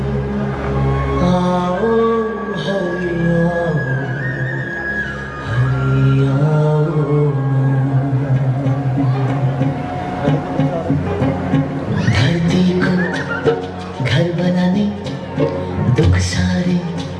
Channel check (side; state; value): both; identical; correlation 1.00